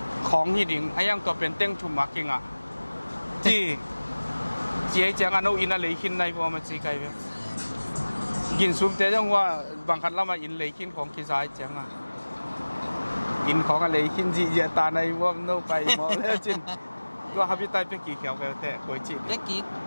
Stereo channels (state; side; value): inverted; both; correlation -1.00